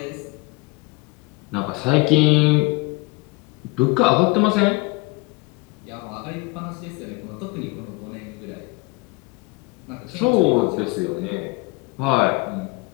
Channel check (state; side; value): quieter; right; 25.6 dB